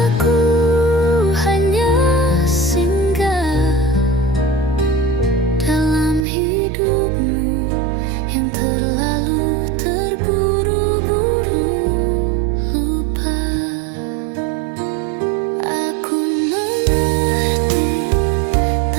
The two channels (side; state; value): left; drops out; at 6.2 s